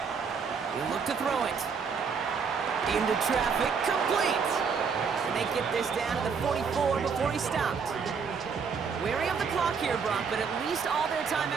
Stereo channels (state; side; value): quieter; left; 5.8 dB